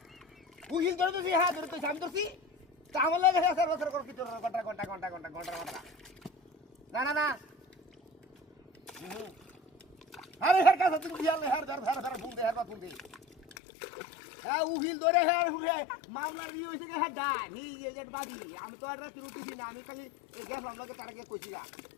উহিল ধরে তুই হ্যাঁ ধরে তুই আমি ধরছি তা আমার লাগে স্যার বছর করে কি তোর ঘন্টা না না না আরে হের কাছে তুমি দিয়াল হের ধর ফুল দে হের বা ফুল দে হ্যাঁ উহিল ধরে হের মামলার ই হইছে কে হেডা নি এজেন্ট বাদি আমি তো আর রাতে উঠিছি না আমি খালি গেলাম লাগে তার আগে কইছি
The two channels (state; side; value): drops out; right; at 13.6 s